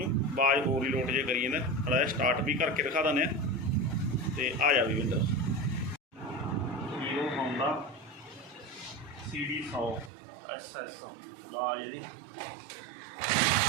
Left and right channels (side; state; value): left; drops out; at 10.1 s